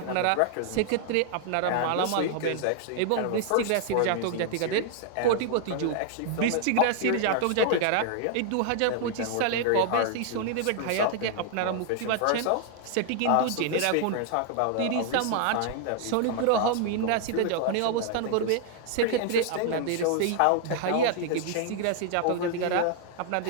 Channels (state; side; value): different; both; correlation -0.01